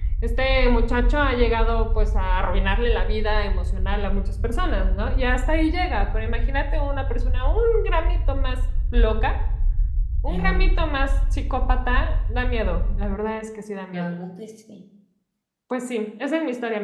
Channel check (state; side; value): identical; both; correlation 1.00